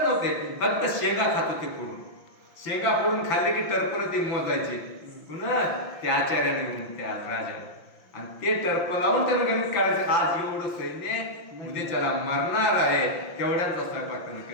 नव्हते, फक्त शेंगा खात होते फोडून. शेंगा फोडून खाल्ले की टर्पण ते मोजायचे पुन्हा त्या आचार्याने घेऊन त्या राजाने. आणि ते टर्प लावून त्यानं गणित काढायचं, आज एवढं सैन्य उद्याच्याला मरणार आहे, तेवढ्यांचा स्वयंपाक त्यानं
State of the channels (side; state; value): right; late; 5.8 ms